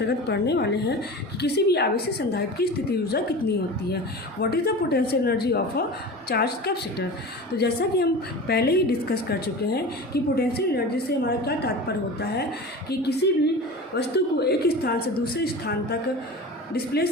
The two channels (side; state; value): both; normal; correlation 0.33